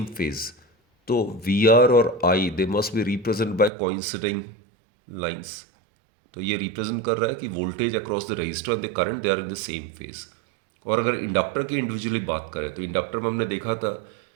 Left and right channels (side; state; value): left; drops out; at 3.7 s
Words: phase, तो VR और I they must be represent by coinciding lines. तो ये रिप्रेजेंट कर रहा है कि voltage across the resistor and the current they are in the same phase. और अगर इंडक्टर की इंडिविजुअली बात करें तो इंडक्टर में हमने देखा था